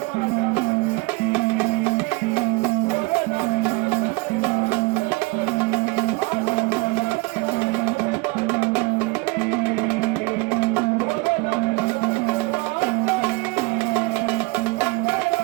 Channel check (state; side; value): quieter; left; 27.2 dB